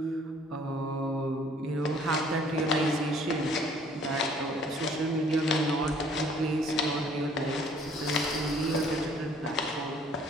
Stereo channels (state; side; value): normal; both; correlation 0.58